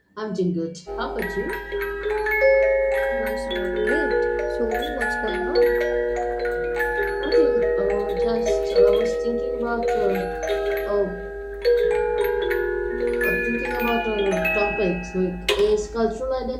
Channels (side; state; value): both; identical; correlation 1.00